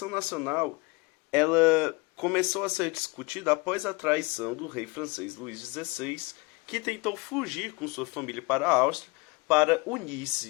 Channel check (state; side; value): quieter; right; 26.5 dB